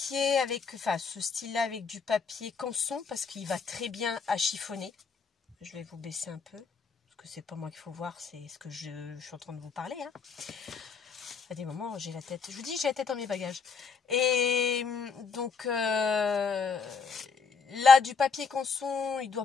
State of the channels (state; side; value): quieter; right; 5.2 dB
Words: avec, enfin ce style-là avec du papier canson parce qu'il va très bien à chiffonner. Je vais vous baisser un peu, parce que c'est pas moi qu'il faut voir, c'est ce que je suis en train de vous parler. Hein. À des moments, j'ai la tête, je vous dis, j'ai la tête dans mes bagages. Et donc, là, du papier canson, il